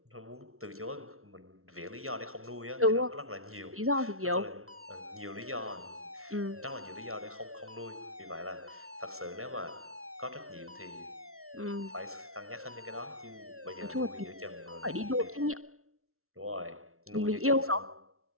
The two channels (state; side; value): late; left; 0.63 ms